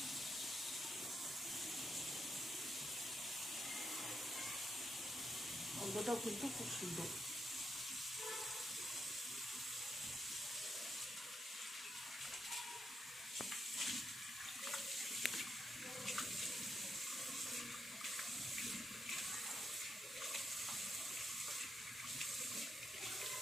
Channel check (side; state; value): both; normal; correlation 0.81